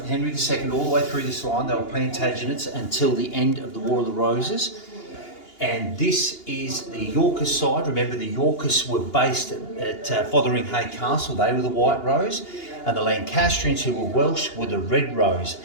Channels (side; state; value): right; late; 2.8 ms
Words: Henry II all the way through this line. They were Plantagenets until the end of the War of the Roses. And this is the Yorkist side. Remember, the Yorkists were based at Fotheringhay Castle. They were the White Rose. And the Lancastrians, who were Welsh, were the Red Rose.